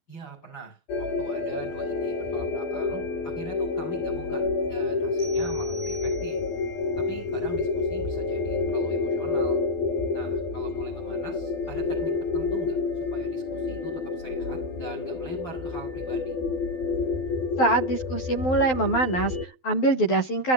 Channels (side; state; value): right; late; 12 ms